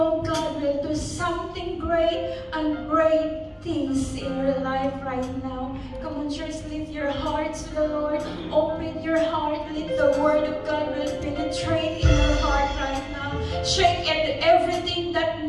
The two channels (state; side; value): identical; both; correlation 1.00